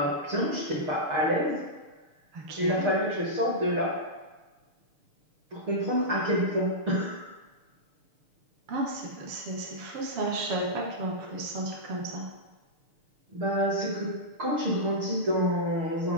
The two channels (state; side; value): late; left; 6.7 ms